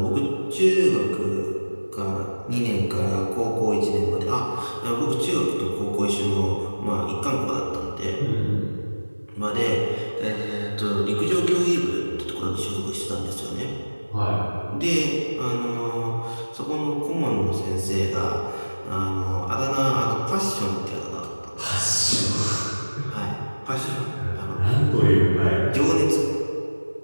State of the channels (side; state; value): both; inverted; correlation -1.00